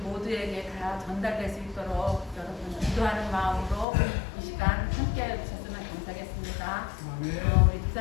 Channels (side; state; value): right; drops out; at 3.9 s